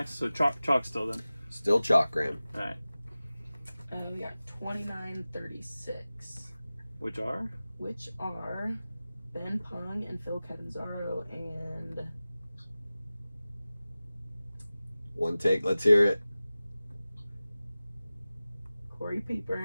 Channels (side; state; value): both; inverted; correlation -0.97